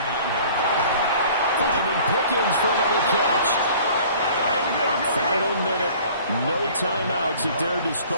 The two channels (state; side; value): inverted; both; correlation -0.50